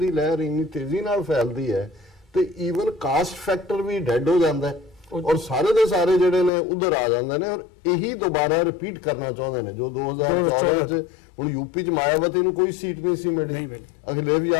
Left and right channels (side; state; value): right; drops out; at 6.5 s